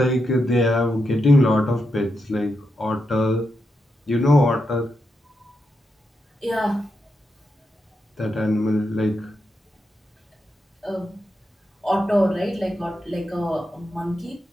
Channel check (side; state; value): both; normal; correlation 0.85